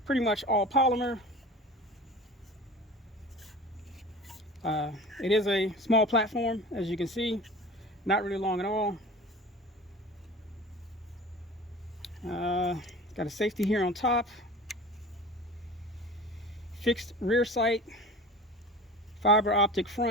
Pretty much all polymer. It is a small platform, as you can see, not really long at all. Got a safety here on top, fixed rear sight, fiber optic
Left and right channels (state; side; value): normal; both; correlation 0.38